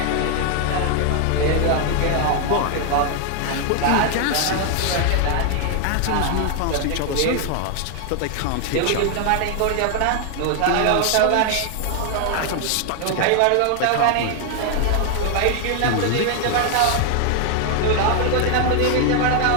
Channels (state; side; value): different; both; correlation 0.00